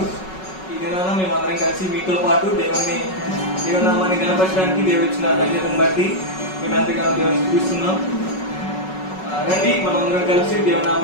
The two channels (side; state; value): right; late; 5.4 ms